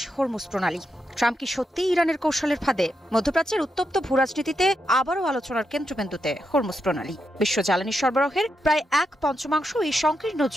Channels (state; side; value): normal; both; correlation 0.84